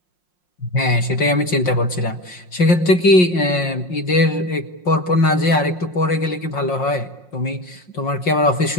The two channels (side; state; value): right; late; 5.6 ms